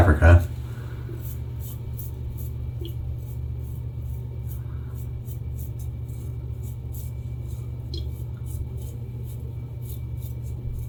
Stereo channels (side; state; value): both; identical; correlation 1.00